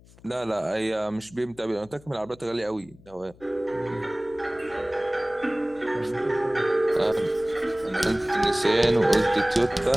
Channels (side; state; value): left; noise; hum, 25 dB below the sound